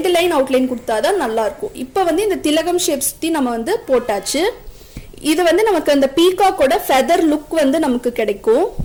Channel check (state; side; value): identical; both; correlation 1.00